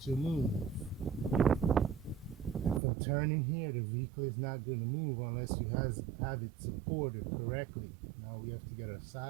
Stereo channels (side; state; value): left; drops out; at 2.8 s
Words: to move. From turning here, the vehicle is not going to move unless you have it supported correctly. Now we have to get our